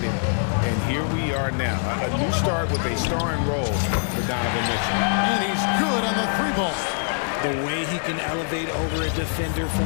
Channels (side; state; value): right; silent; 60 dB below the other